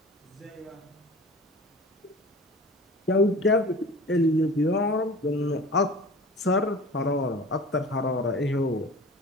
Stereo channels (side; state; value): both; normal; correlation 0.39